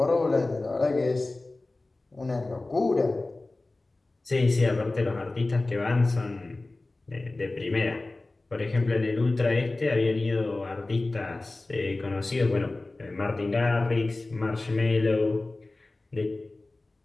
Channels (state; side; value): quieter; right; 3.0 dB